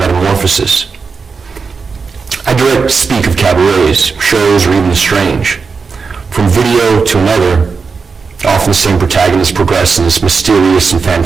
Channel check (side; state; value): left; quieter; 5.1 dB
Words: I direct speak of cabarets, shows, or even the strange. From video to another, often the same protagonists progress in this mysterious and